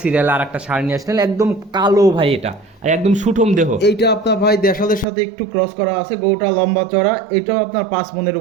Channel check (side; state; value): left; drops out; at 5.1 s